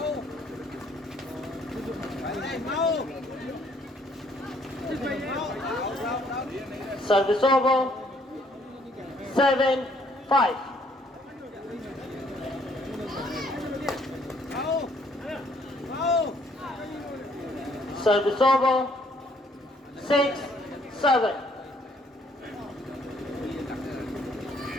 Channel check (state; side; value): normal; both; correlation 0.65